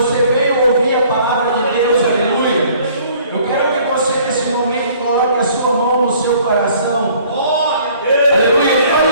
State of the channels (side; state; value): both; inverted; correlation -0.56